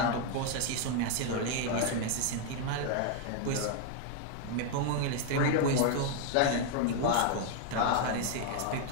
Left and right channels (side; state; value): both; different; correlation 0.00